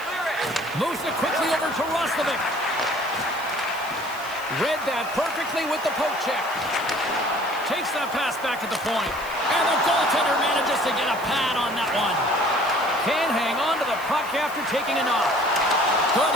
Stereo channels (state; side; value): noise; right; hiss, 18 dB below the sound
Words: Moves it quickly over to Roslovic. Read that perfectly with the poke check. Takes that pass back at the point. And the goaltender manages to get a pad on that one. Can't hang on to the puck after taking a knock. Good